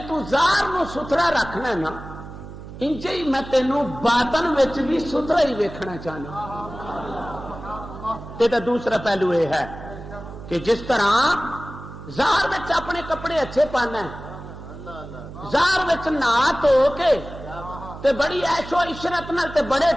تو ظاہر نو ستھرا رکھنا ہے نا، انجے ہی میں تینوں باطن وچ بھی ستھرا ہی ویکھنا چاہنا۔ تے دا دوسرا پہلو یہ ہے کہ جس طرح ظاہر وچ اپنے کپڑے اچھے پانا ہے، ظاہر وچ نہا دھو کے تے بڑی عیش و عشرت نال تے بڑے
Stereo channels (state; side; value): noise; right; hum, 13 dB below the sound